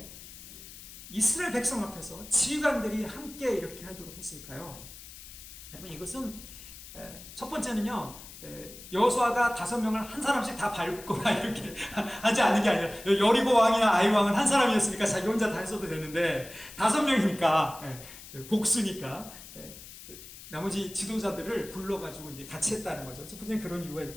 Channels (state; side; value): noise; left; hiss, 16 dB below the sound